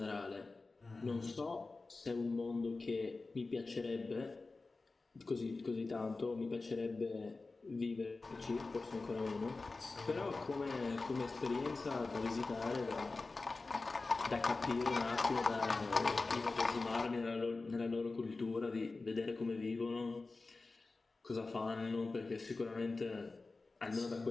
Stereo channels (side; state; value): right; quieter; 3.7 dB